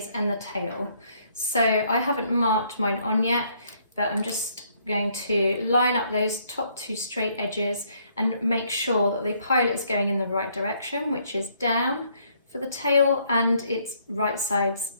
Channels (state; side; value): inverted; both; correlation -0.68